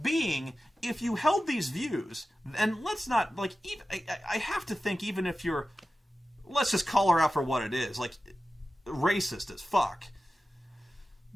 being, if you held these views, and let's not like, even I have to think, even if you're, let's just call her out for what it is, like racist as fuck.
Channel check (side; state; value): both; normal; correlation 0.94